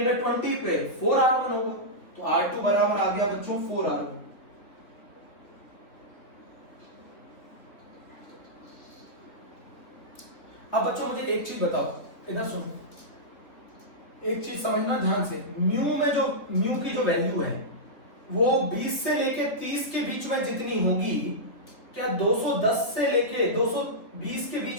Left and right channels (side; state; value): right; late; 3.7 ms